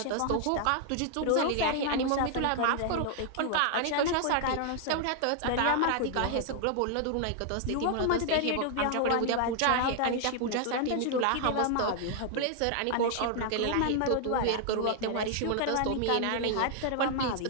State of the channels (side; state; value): both; different; correlation 0.00